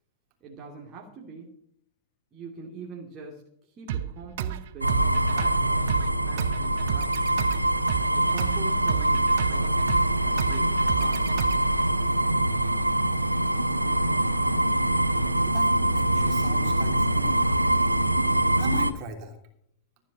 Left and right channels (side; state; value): both; inverted; correlation -0.89